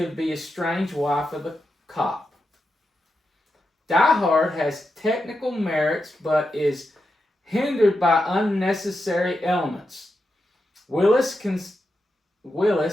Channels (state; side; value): normal; both; correlation 0.87